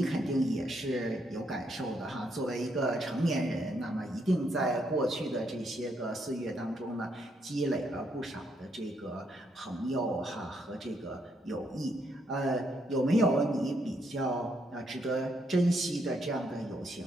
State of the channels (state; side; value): normal; both; correlation 0.75